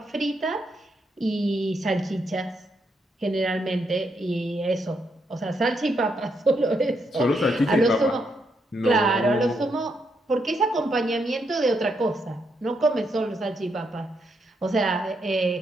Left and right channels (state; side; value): normal; both; correlation 0.78